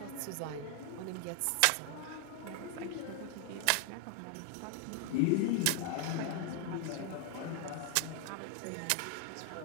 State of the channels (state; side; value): different; both; correlation 0.00